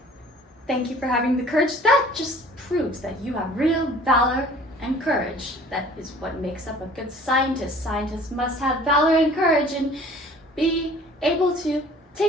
Thank you for having the courage. That just proves that you have real valor and courage. That is what makes up a good scientist. Scientists must have valor and courage and be able to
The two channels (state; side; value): normal; both; correlation 0.50